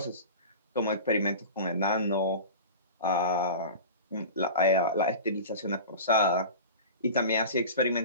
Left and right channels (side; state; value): both; inverted; correlation -0.33